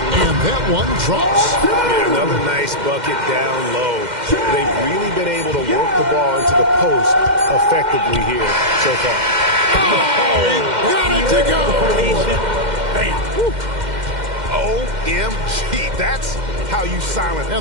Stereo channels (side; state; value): left; late; 2.1 ms